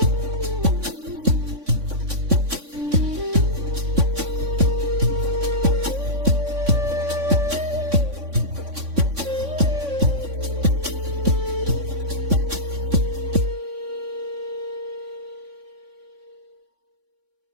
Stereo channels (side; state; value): left; late; 3.6 ms